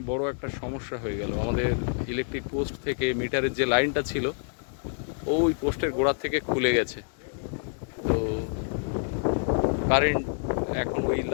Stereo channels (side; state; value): right; silent; digital silence